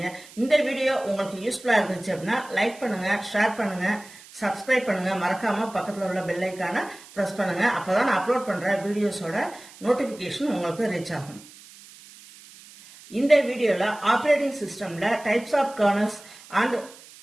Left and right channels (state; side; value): noise; right; hiss, 21 dB below the sound